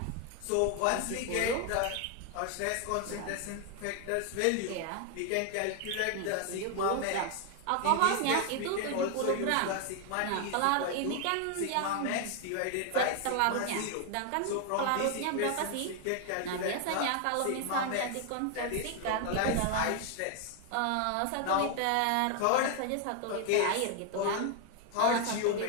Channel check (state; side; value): different; both; correlation 0.00